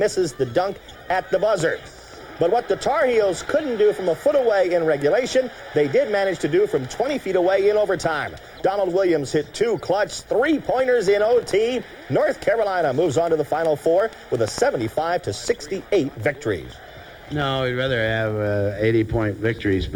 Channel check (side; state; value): both; identical; correlation 1.00